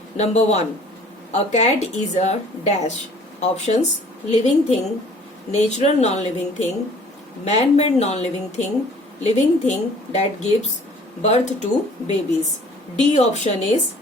Number 1. A cat is a dash. Options: living thing, natural non-living thing, man-made non-living thing that gives birth to babies. D option is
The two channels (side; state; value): both; normal; correlation 0.53